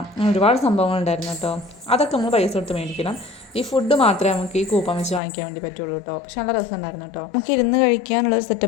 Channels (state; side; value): drops out; right; at 5.2 s